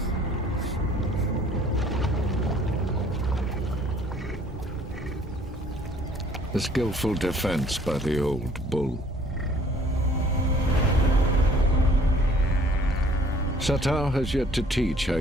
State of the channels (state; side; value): normal; both; correlation 0.57